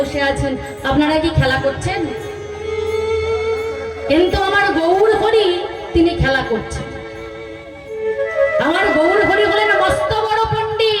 আছেন, আপনারা কি খেলা করছেন? কিন্তু আমার গৌর হরি তিনি খেলা করছেন। আমার গৌর হরি হলেন মস্ত বড়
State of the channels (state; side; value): identical; both; correlation 1.00